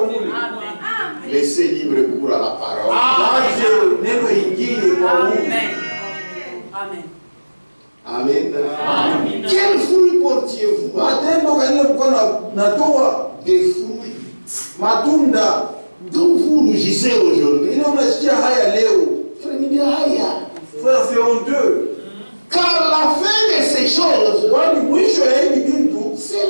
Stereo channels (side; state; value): both; inverted; correlation -1.00